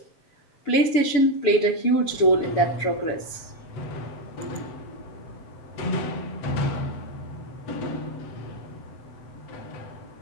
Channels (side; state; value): right; late; 7.0 ms